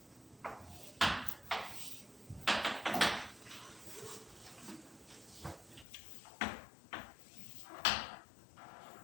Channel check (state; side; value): drops out; right; at 5.9 s